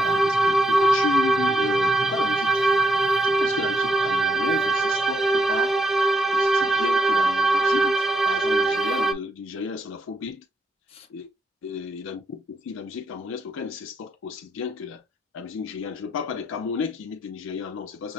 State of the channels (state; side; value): normal; both; correlation 0.78